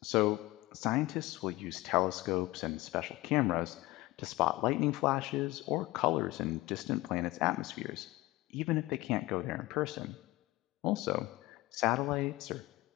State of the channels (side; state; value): right; quieter; 19.4 dB